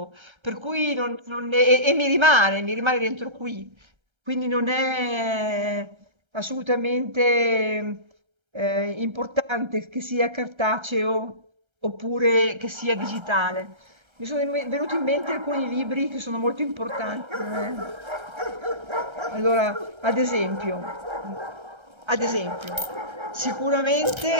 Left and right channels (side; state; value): left; late; 1.3 ms